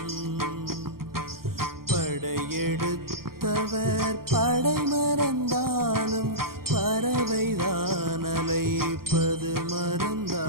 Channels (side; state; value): left; late; 0.92 ms